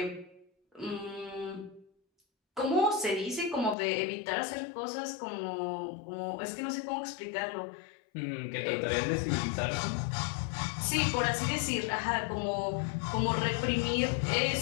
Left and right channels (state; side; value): drops out; right; at 3.8 s